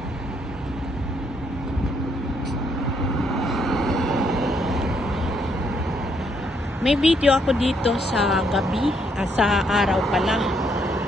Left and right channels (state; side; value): normal; both; correlation 0.72